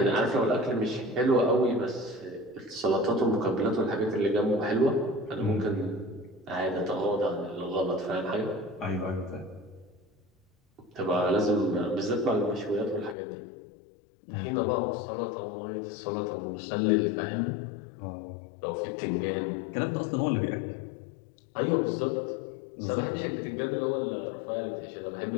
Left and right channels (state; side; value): drops out; right; at 13.2 s